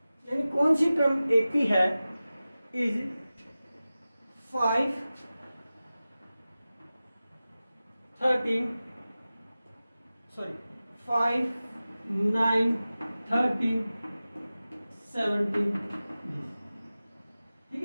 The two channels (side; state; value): both; inverted; correlation -0.96